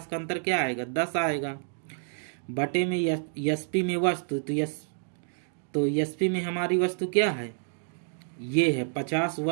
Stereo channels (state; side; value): silent; left; digital silence